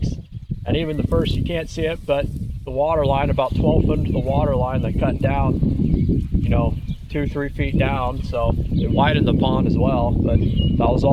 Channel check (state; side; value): identical; both; correlation 1.00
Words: And even the first, you can't see it, but the water line, about 12 foot into the water line, they cut down, you know, 2-3 feet down, so it widened the pond as well. But that was